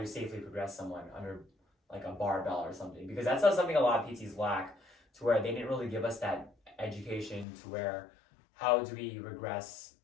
safely progress someone under a barbell or something, because that's something a lot of PTs lack, to where they didn't really give us that education to where how do we regress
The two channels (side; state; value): right; drops out; at 7.5 s